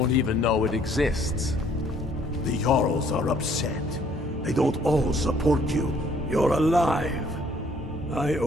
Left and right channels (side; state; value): both; normal; correlation 0.61